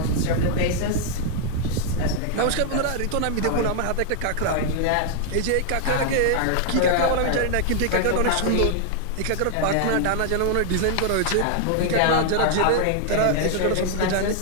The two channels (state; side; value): different; both; correlation 0.00